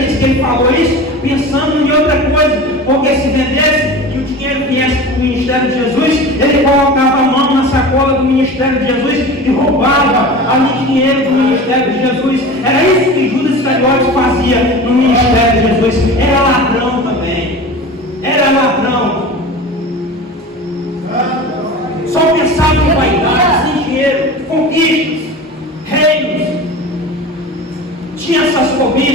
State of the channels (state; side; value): normal; both; correlation 0.34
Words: que ele falou isso pensando em outra coisa, porque se vendesse e o dinheiro viesse para o ministério de Jesus, ele colocava a mão na sacola do ministério de Jesus e roubava ali dinheiro do ministério de Jesus. Era isso que Judas Iscariotes fazia no ministério de Jesus. Era ladrão também. Era ladrão. Só pensava em vaidade, em dinheiro, conquistas, reinos. Tinha essas